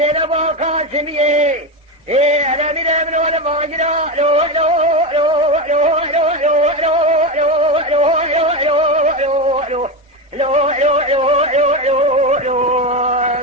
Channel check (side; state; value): both; normal; correlation 0.15